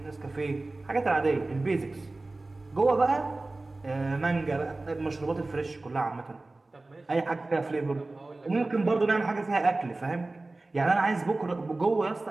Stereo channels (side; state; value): left; quieter; 3.1 dB